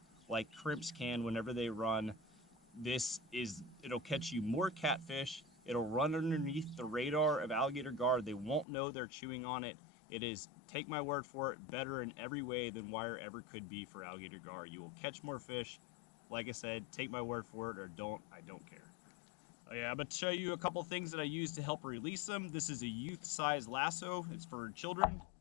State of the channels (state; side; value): drops out; right; at 8.7 s